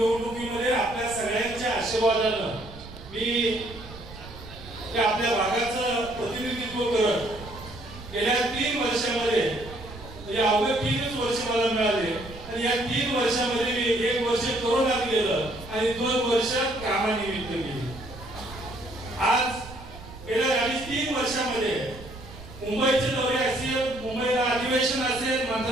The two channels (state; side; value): noise; right; rumble, 16 dB below the sound